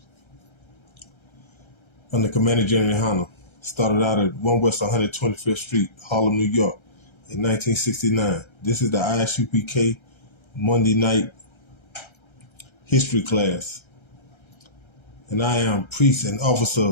under Commander Gen.YAHANNA. Started out at 1 West 125th Street, Harlem, New York, in 1969. This is the I.S.U.P.K. Monday night history class. And I am priest and officer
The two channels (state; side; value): late; right; 1.3 ms